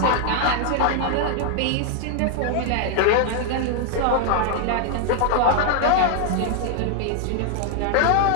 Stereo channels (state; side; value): different; both; correlation 0.00